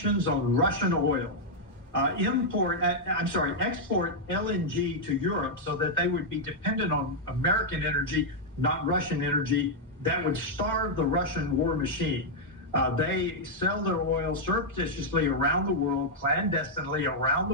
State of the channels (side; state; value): both; normal; correlation -0.04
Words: on Russian oil. Export LNG to Europe so that they would be dependent on American energy, not Russian energy. That would starve the Russian war machine. They sell their oil surreptitiously around the world, clandestinely around